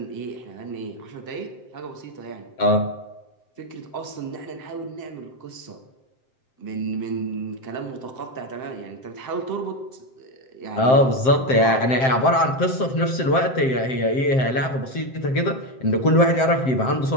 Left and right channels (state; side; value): late; right; 7.6 ms